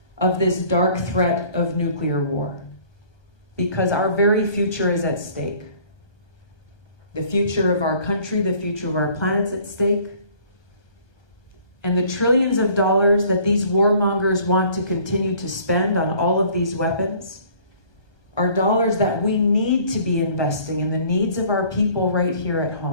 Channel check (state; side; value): late; right; 1.2 ms